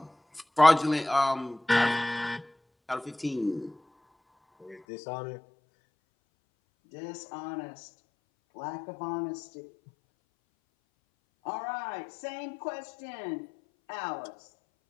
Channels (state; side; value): drops out; right; at 4.8 s